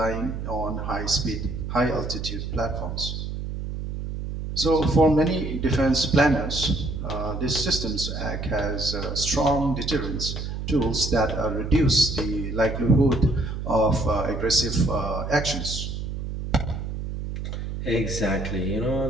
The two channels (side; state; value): right; noise; hum, 5 dB below the sound